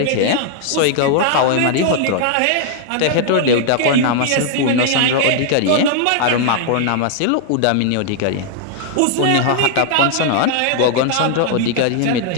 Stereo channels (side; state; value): both; different; correlation 0.00